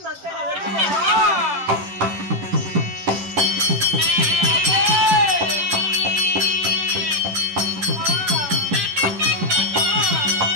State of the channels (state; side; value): late; left; 10 ms